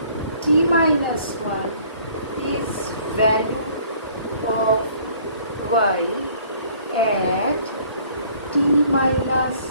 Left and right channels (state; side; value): inverted; both; correlation -0.57